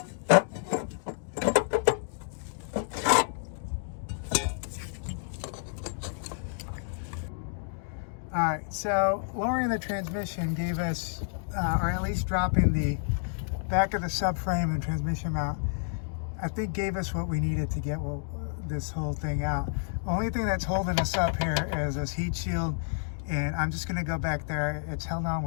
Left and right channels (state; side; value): silent; right; digital silence